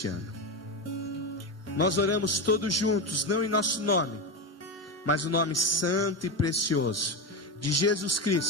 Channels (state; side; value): normal; both; correlation 0.15